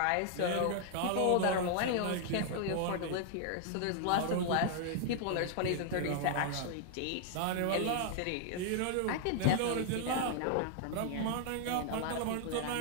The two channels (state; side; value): different; both; correlation 0.00